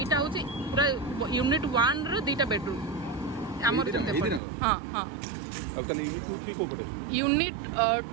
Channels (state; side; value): drops out; left; at 4.4 s